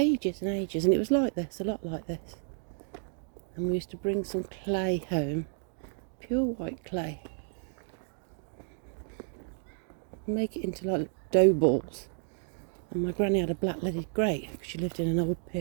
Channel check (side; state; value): left; silent; 57 dB below the other